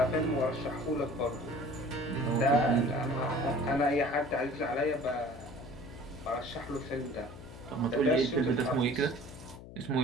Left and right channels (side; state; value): left; noise; hum, 15 dB below the sound